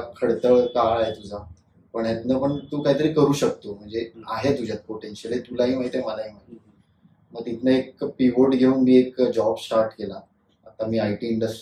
खडतळ काळ आहे तुझा, पण यातनं पण तू काहीतरी करू शकतो, म्हणजे आहे तुझ्यात पोटेन्शियल आहे, तुलाही माहिती आहे मलाही माहिती. मग तिथनं एक पिव्होट घेऊन मी एक जॉब स्टार्ट केला. आता मी IT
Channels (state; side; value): identical; both; correlation 1.00